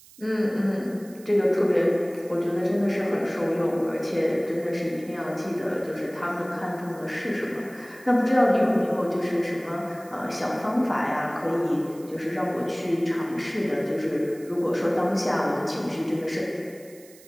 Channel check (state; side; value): noise; right; hiss, 23 dB below the sound